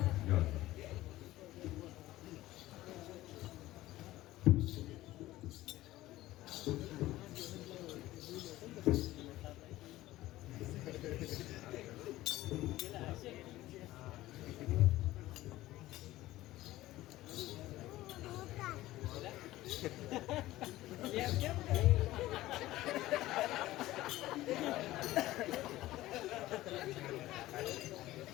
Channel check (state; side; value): quieter; right; 16.4 dB